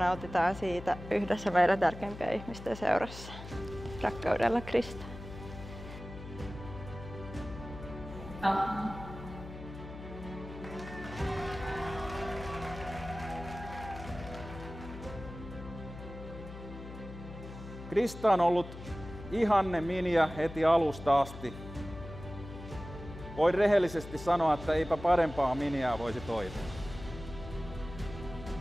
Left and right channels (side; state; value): left; noise; hum, 12 dB below the sound